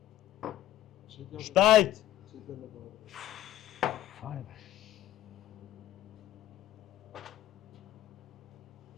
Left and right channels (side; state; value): right; quieter; 13.4 dB